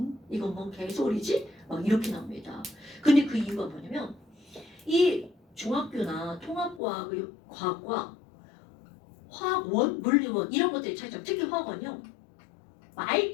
이건 뭔 개소리지? 막 이렇게 나옵니다. 근데 그 이유가 뭐냐면 이 중학교나 통합과학, 과학과 화학원, 물리원 이런 것들이 차이점. 특히 화학원요.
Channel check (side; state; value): right; drops out; at 6.8 s